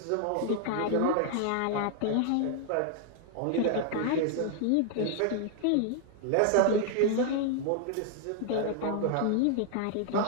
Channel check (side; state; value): both; different; correlation 0.00